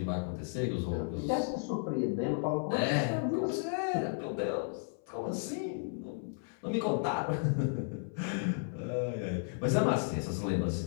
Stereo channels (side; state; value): right; silent; 55 dB below the other